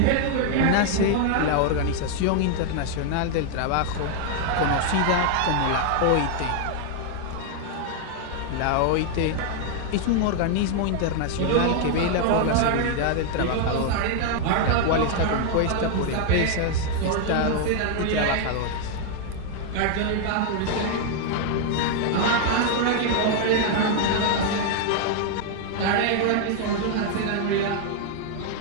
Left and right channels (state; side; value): different; both; correlation 0.00